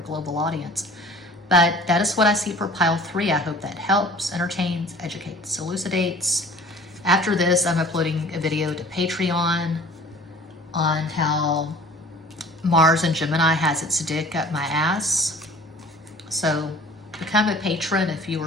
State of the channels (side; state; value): both; normal; correlation 0.48